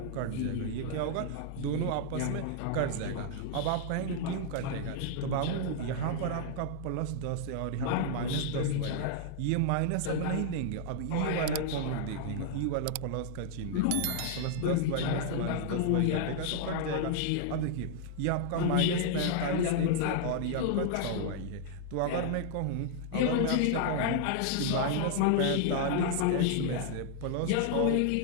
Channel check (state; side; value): different; both; correlation -0.01